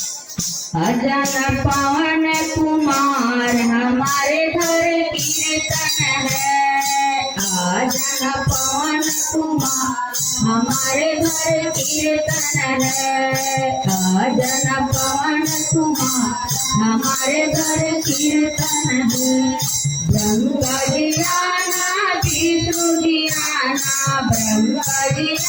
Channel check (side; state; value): both; identical; correlation 1.00